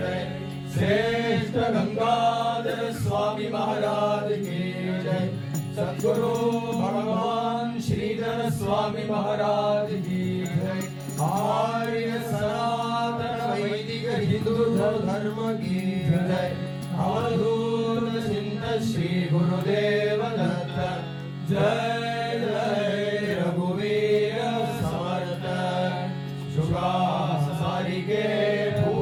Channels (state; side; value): identical; both; correlation 1.00